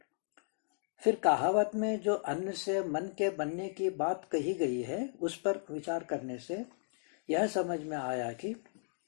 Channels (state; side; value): silent; right; digital silence